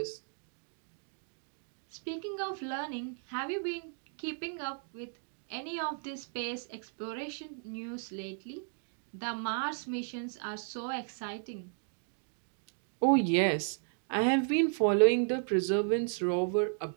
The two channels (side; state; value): left; silent; 55 dB below the other